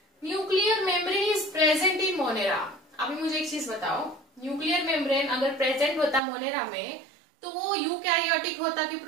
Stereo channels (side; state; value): left; drops out; at 6.2 s